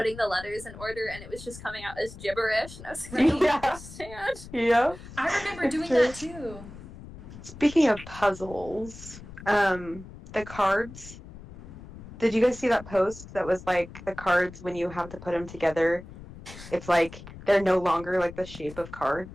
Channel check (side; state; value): left; noise; rumble, 15 dB below the sound